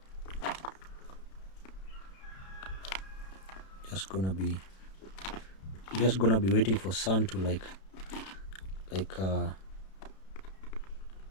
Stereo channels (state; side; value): late; right; 32 ms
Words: Just gonna be waiting for sun to